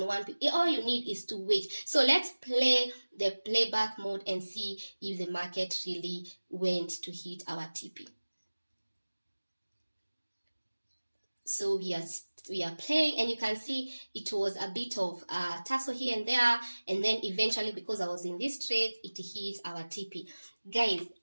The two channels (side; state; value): both; inverted; correlation -1.00